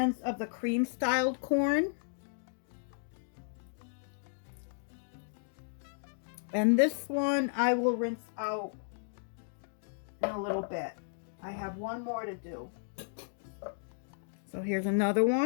of the cream styled corn. And this one I will rinse out in a little bit. I have 1 more to do. So here's another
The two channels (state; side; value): silent; right; digital silence